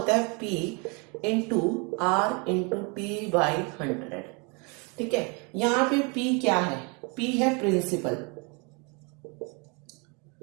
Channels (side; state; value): left; quieter; 31.8 dB